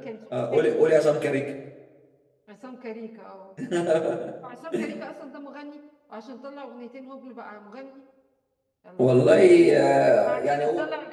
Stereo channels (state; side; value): identical; both; correlation 1.00